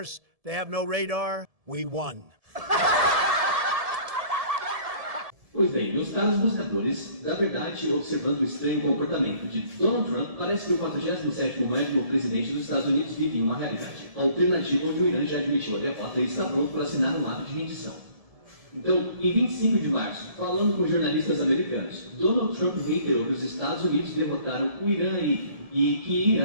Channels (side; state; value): left; late; 1.7 ms